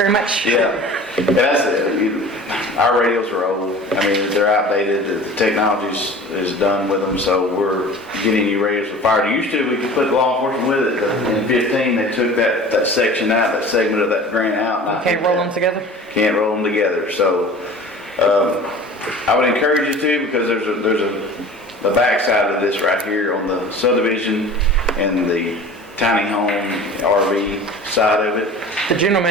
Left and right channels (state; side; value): normal; both; correlation 0.41